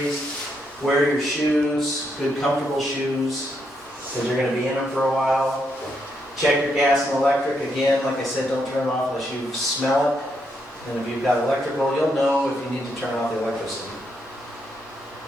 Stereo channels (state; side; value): normal; both; correlation 0.78